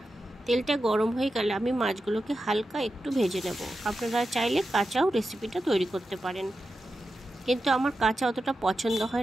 তেলটা গরম হয়ে গেলে আমি মাছগুলোকে হালকা একটু ভেজে নেব। আপনারা চাইলে কাঁচাও রেসিপিটা তৈরি করতে পারেন, কিন্তু আমার কাঁচা অতটা পছন্দ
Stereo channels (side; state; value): both; normal; correlation 0.90